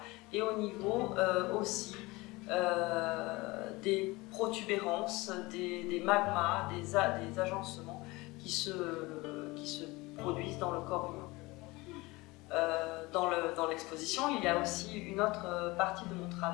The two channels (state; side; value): quieter; right; 22.5 dB